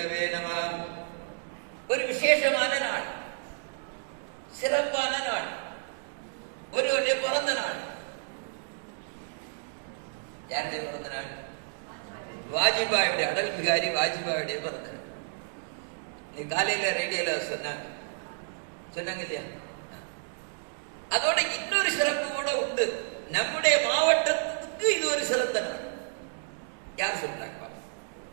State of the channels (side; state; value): left; silent; digital silence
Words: नमः। ஒரு விசேஷமான நாள், சிறப்பான நாள், ஒருவருடைய பிறந்த நாள். யாருடைய பிறந்த நாள்? வாஜ்பாயுடைய, அடல் பிகாரி வாஜ்பாயுடைய பிறந்த நாள். நீ காலையில ரேடியோல சொன்னாங்க இல்லையா? அதோட இன்னொரு சிறப்பு கூட உண்டு. நம்முடைய மாவட்டத்துக்கு இது ஒரு சிறந்த நாள். யார் சொல்றாங்க?